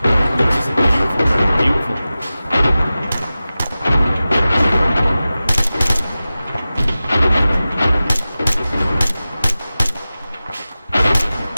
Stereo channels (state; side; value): inverted; both; correlation -0.95